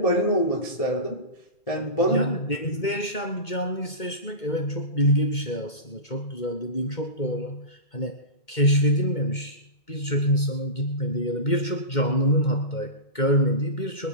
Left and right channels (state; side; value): late; right; 2.2 ms